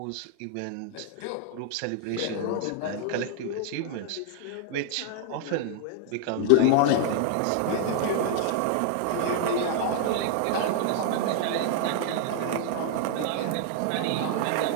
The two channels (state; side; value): different; both; correlation -0.01